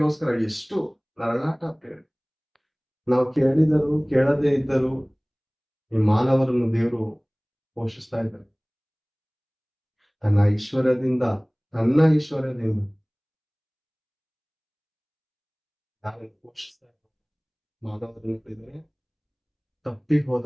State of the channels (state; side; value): identical; both; correlation 1.00